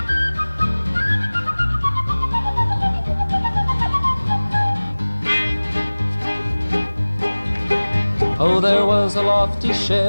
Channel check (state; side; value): inverted; both; correlation -1.00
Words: Oh, there was a lofty